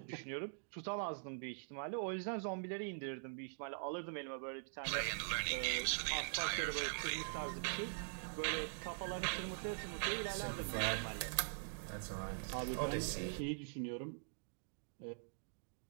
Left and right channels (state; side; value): silent; left; digital silence